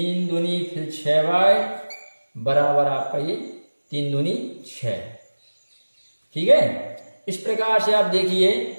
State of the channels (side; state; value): both; inverted; correlation -1.00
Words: दूनी फिर 6y बराबर आपका ये 3 दूनी 6। ठीक है, इस प्रकार से आप देखिए